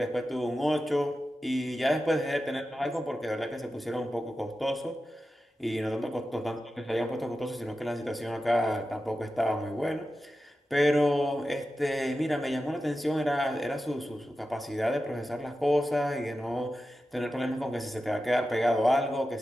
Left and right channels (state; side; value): normal; both; correlation 0.92